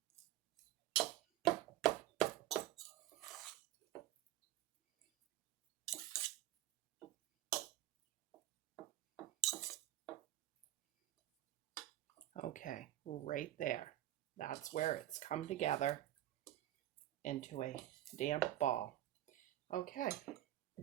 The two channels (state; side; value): quieter; left; 13.7 dB